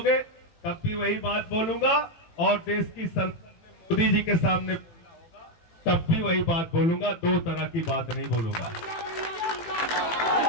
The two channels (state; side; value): late; right; 18 ms